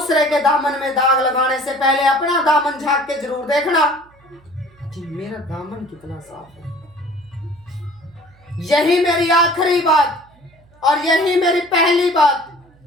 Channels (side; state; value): right; noise; hum, 30 dB below the sound